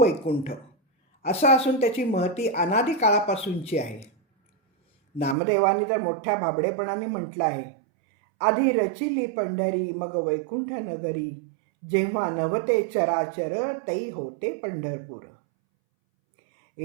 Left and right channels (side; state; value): left; drops out; at 5.4 s